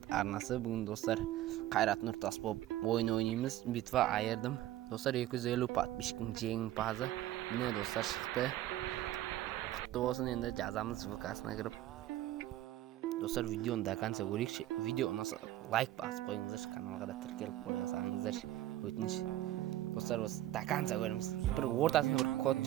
arnasi. Bugun do'stlar Qayrat Nurtas bo'lib o'yin o'ynaymiz. Bitva ayirdim. Do'stlar 250 подписчиктning jengpazi mana do'stlar chiqdi. Qutlu bo'lsin. Endi jazamiz VK'sine kirib. Do'stlar videoni до конца ko'ring. Video unasa like bosib qo'yingizlar, kanalga da tirkelib qo'yasizlar. O'tinish. Do'stlar biz до конца ko'ramiz. Bir o'rtasida bir kod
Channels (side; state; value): left; quieter; 14.0 dB